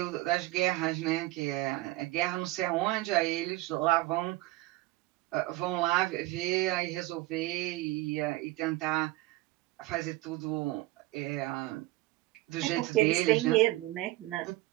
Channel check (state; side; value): quieter; left; 18.7 dB